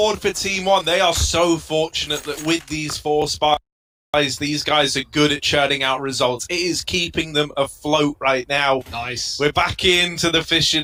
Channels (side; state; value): both; identical; correlation 1.00